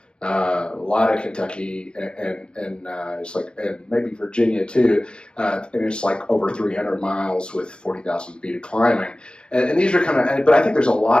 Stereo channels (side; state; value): right; late; 0.053 ms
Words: a lot of Kentucky and it's like, and maybe Virginia too, and it's like over 300 miles with 40,000 feet of climbing. And these are kind of, but I think there's a